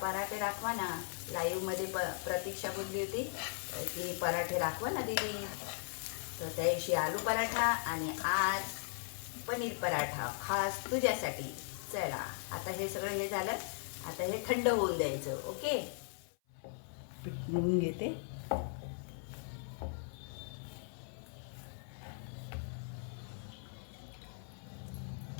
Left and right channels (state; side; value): silent; right; 52 dB below the other